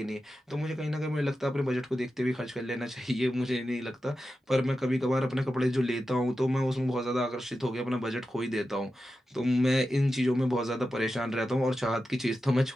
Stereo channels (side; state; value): both; normal; correlation 0.91